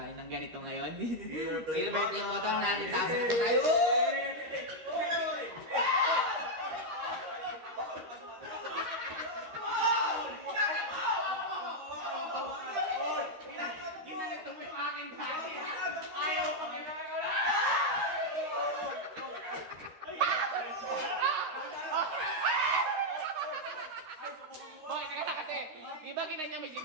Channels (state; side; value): late; left; 13 ms